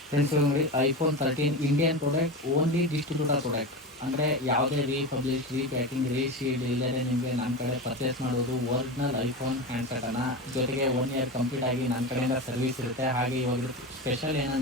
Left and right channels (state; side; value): normal; both; correlation 0.23